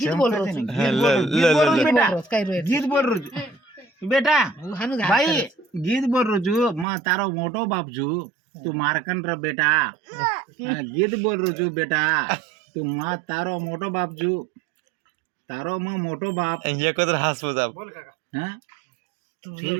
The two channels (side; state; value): left; drops out; at 6.9 s